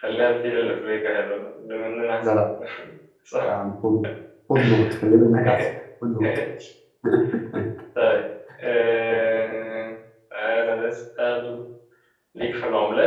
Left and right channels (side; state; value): both; identical; correlation 1.00